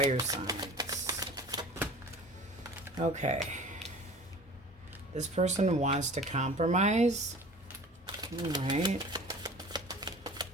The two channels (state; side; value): normal; both; correlation 0.43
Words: signs? Okay. This person wants to compromise. All right.